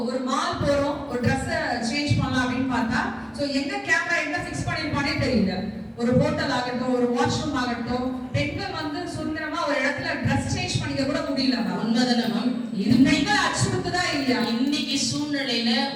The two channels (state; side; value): identical; both; correlation 1.00